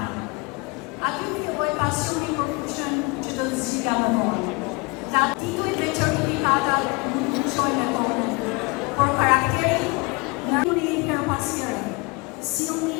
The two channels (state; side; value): quieter; right; 28.0 dB